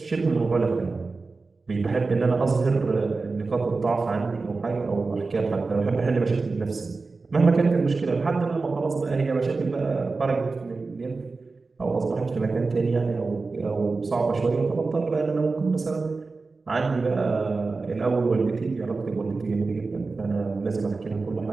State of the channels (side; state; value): left; quieter; 3.9 dB